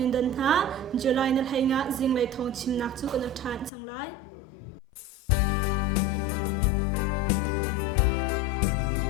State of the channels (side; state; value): right; drops out; at 3.7 s